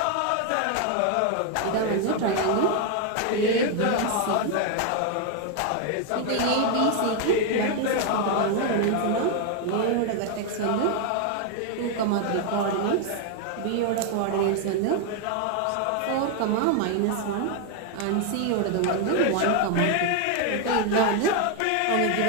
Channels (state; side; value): different; both; correlation 0.01